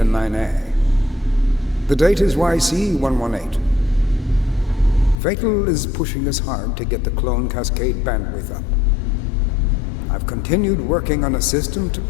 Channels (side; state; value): right; drops out; at 5.2 s